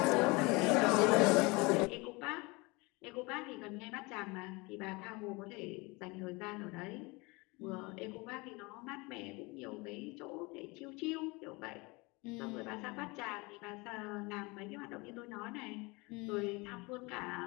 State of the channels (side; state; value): right; quieter; 25.8 dB